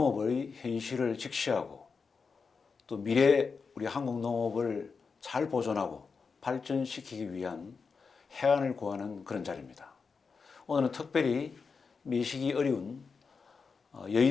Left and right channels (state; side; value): quieter; right; 5.1 dB